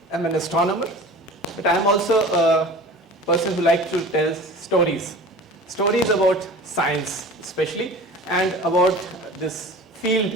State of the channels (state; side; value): normal; both; correlation 0.39